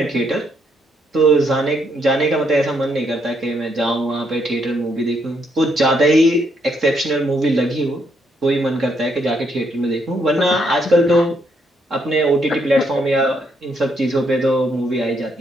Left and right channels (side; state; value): both; normal; correlation 0.74